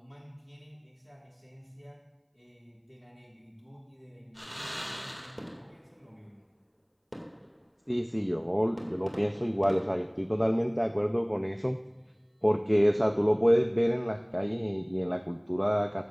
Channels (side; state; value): both; identical; correlation 1.00